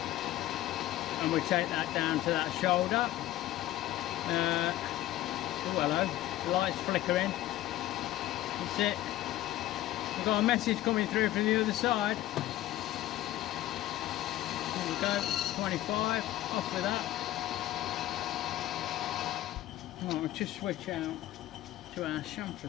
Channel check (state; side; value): quieter; right; 14.8 dB